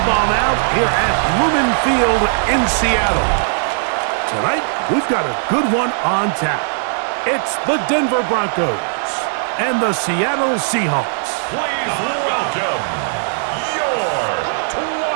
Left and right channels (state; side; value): silent; left; 68 dB below the other